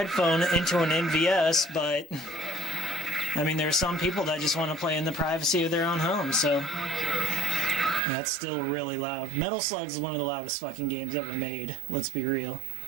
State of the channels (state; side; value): drops out; left; at 8.0 s